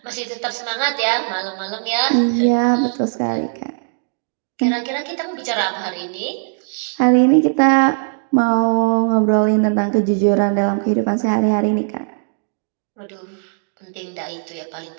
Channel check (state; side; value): silent; left; 66 dB below the other